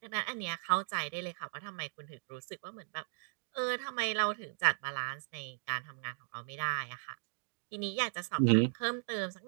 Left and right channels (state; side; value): silent; left; digital silence